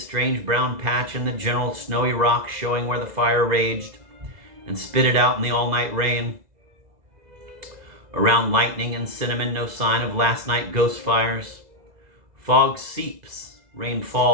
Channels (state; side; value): late; left; 2.0 ms